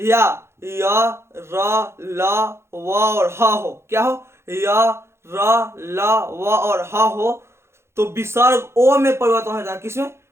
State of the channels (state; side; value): late; left; 0.13 ms